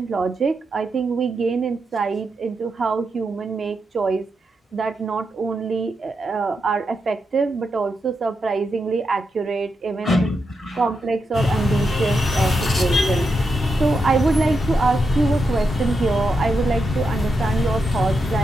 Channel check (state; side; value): normal; both; correlation 0.85